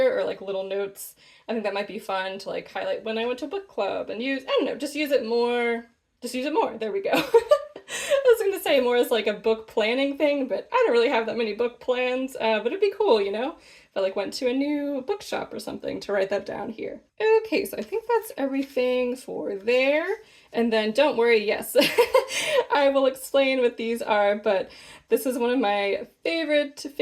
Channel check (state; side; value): identical; both; correlation 1.00